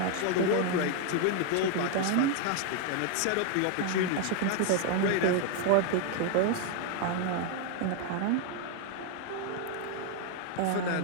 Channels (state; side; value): different; both; correlation 0.00